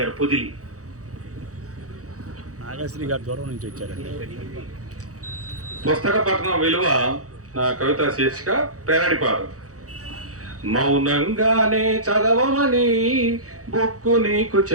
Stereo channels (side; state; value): left; late; 0.66 ms